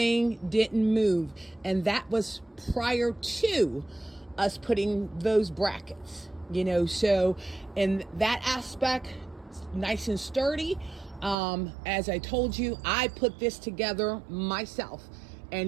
didn't move, and that was prior to us putting those brackets, you know. So in that aspect, nice and sturdy. As I told you, I put this together myself,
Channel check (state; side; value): drops out; left; at 11.4 s